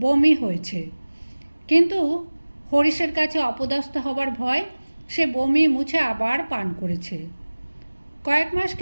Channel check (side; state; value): both; inverted; correlation -1.00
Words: বমি হয়েছে। কিন্তু হরিশের কাছে অপদস্থ হবার ভয় সে বমি মুছে আবার পান করেছে। কয়েক মাস